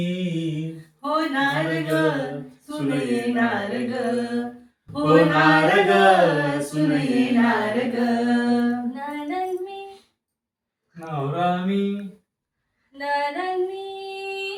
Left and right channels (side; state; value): both; identical; correlation 1.00